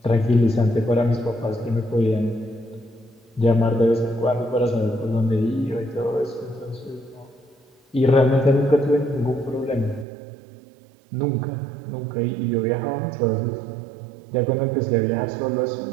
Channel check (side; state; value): left; drops out; at 10.1 s